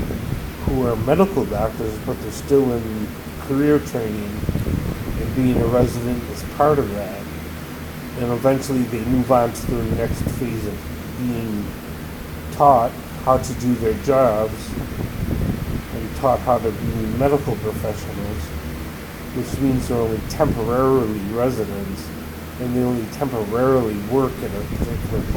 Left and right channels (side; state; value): both; identical; correlation 1.00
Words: who are medical doctors, but they're still in career training, and being a resident is part of that. And eventually they move on to the next phase of being taught how to do their jobs and taught how to be medical professionals, which means they're only temporarily residents and they only temporarily work in a particular